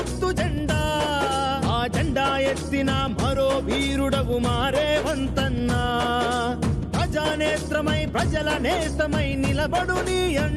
జెండా, ఆ జెండా ఎత్తిన మరో వీరుడవు మారేవంతన్నా. ప్రజానేత్రమై ప్రజల నేస్తమై నిలబడు నీ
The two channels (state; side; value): identical; both; correlation 1.00